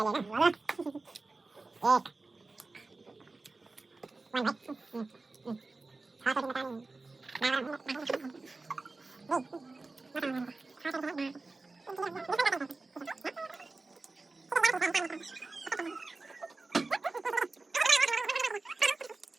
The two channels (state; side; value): quieter; left; 3.5 dB